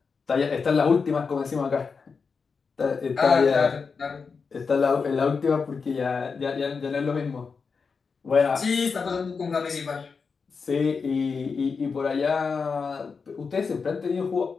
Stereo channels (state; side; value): quieter; right; 5.2 dB